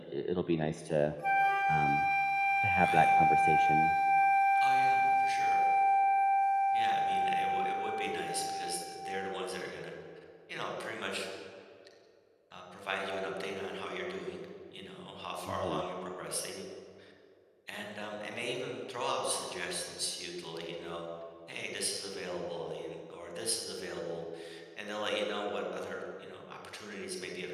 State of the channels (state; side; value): identical; both; correlation 1.00